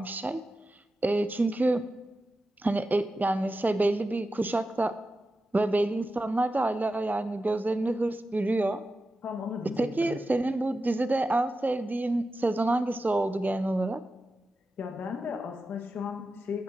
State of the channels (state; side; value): normal; both; correlation 0.92